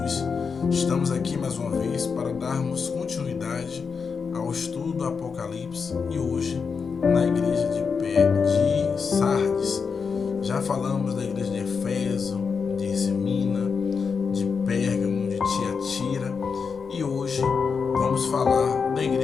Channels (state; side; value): quieter; right; 5.6 dB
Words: Estamos aqui mais uma vez para darmos continuidade ao estudo do Apocalipse e hoje na igreja de Sardes. Já falamos da igreja de Éfeso, de Esmina, de Pérgamo, de Tiatira e hoje vamos falar da